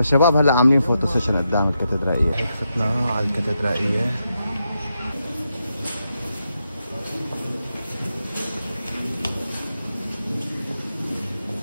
هلا عاملين فوتو سيشن قدام الكاتدرائية. هيك فتنا على الكاتدرائية.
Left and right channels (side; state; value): both; inverted; correlation -0.85